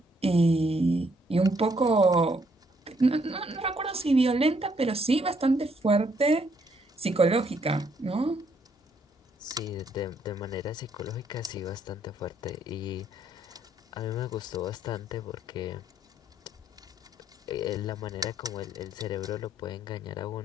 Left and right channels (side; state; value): both; normal; correlation 0.70